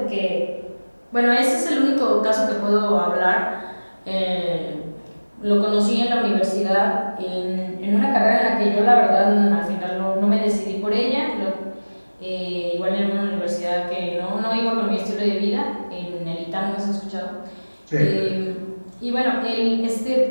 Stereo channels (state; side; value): inverted; both; correlation -1.00